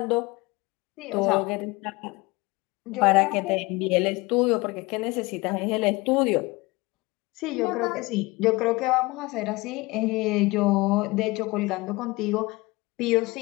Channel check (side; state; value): right; quieter; 23.1 dB